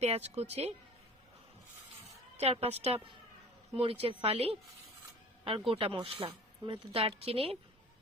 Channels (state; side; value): normal; both; correlation 0.43